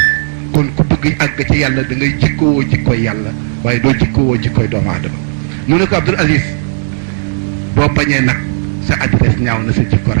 kon ku bëgg àgg ci yàlla da ngay jikkowoo jikkoy yàlla waaye doo jikkowoo jikkoy doomu aadama mu ne ko Abdoul Aziz boo bañee nag sa adresse ñaaw na sa jikko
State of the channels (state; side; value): silent; left; digital silence